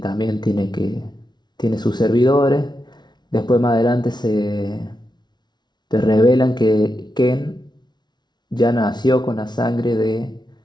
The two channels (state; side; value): late; right; 0.20 ms